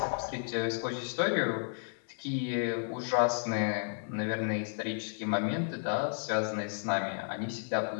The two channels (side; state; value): right; silent; digital silence